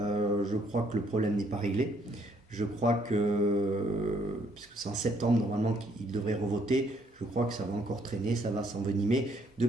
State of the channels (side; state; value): both; normal; correlation 0.68